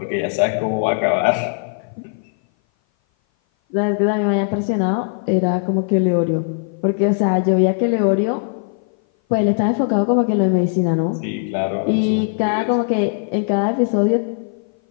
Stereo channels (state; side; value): silent; right; 58 dB below the other